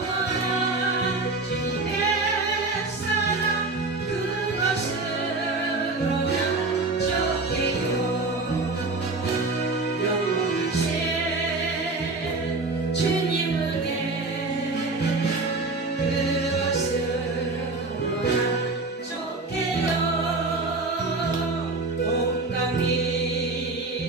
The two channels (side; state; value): left; quieter; 3.4 dB